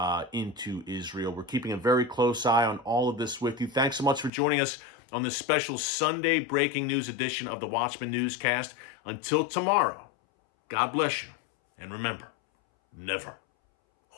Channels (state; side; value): drops out; right; at 4.3 s